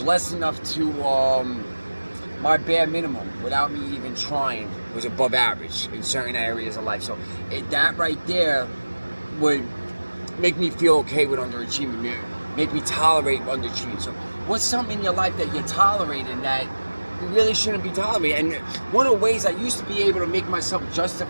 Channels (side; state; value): both; inverted; correlation -1.00